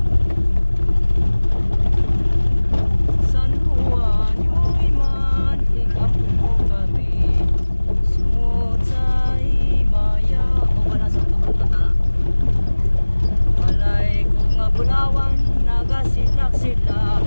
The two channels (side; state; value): both; inverted; correlation -1.00